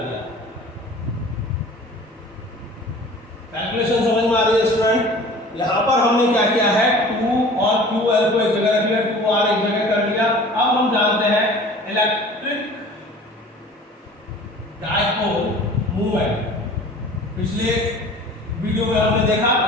दिया। कैलकुलेशन समझ में आ रही है स्टूडेंट? यहाँ पर हमने क्या किया है, 2 और QL को एक जगह रख लिया, 2R एक जगह कर लिया। अब हम जानते हैं इलेक्ट्रिक डायपोल मूवमेंट, पिछले वीडियो में हमने देखा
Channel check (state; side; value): normal; both; correlation 0.44